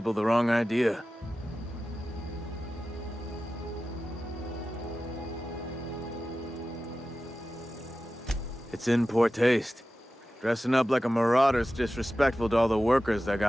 the wrong idea. It's in poor taste. Dressing up like a marauder's disrespectful to all the workers that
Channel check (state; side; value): normal; both; correlation 0.94